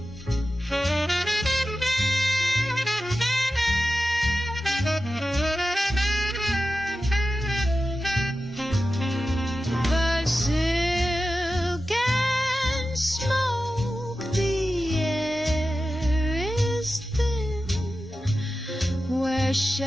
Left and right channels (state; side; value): normal; both; correlation 0.93